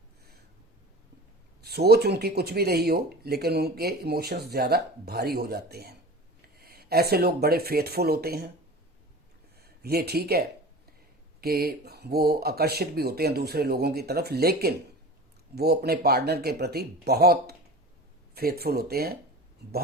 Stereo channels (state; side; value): normal; both; correlation 0.36